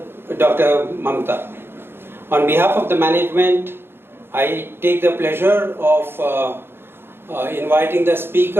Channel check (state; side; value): late; left; 0.11 ms